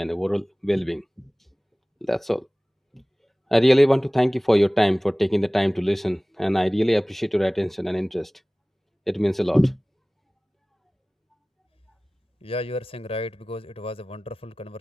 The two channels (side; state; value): both; normal; correlation 0.98